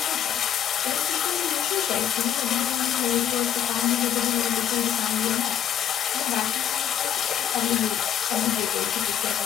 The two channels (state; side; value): quieter; right; 9.7 dB